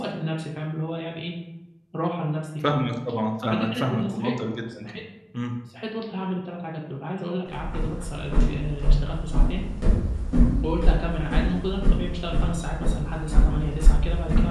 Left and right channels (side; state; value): both; identical; correlation 1.00